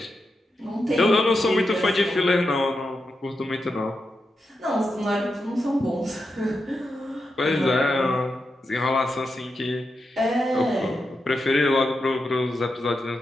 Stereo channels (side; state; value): both; normal; correlation 0.87